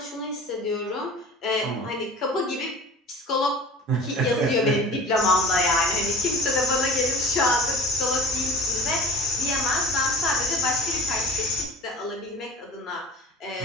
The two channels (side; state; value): both; normal; correlation 0.39